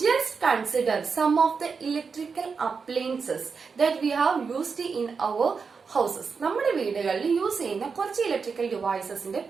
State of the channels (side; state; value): left; quieter; 5.4 dB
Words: Just consider some of the electrical appliances that we have used in our houses. നമ്മുടെ വീടുകളിൽ യൂസ് ചെയ്യുന്ന കുറച്ച് ഇലക്ട്രിക്കൽ ഡിവൈസസിന്റെ